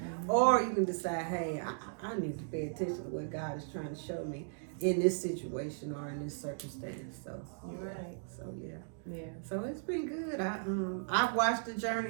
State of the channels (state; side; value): silent; left; digital silence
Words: Or you can decide, hey, I need to pay attention to what God is trying to show me in this situation or in this circumstance. So you're right. So yeah. So it's been good. I've watched the